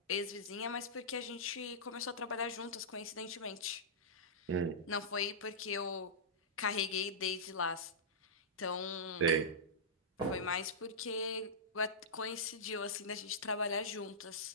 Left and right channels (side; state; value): both; normal; correlation -0.15